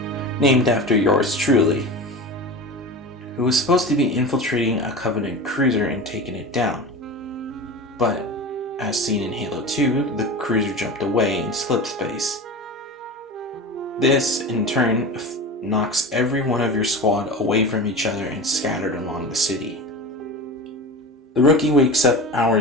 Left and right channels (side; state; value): both; normal; correlation 0.30